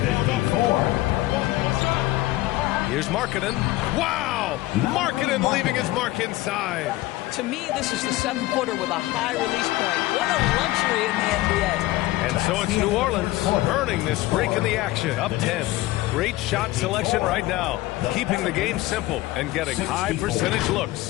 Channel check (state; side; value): quieter; right; 17.7 dB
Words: 54. Here's Markkanen. Wow! Markkanen leaving his mark inside. To me, this is the 7-footer with a high release point. What a luxury in the NBA. And so it's New Orleans earning this break in the action, up 10. Great shot selection right now, keeping the game simple and getting high percentage